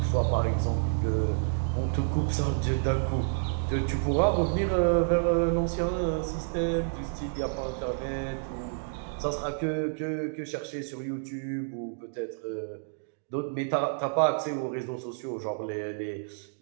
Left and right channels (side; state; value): left; silent; digital silence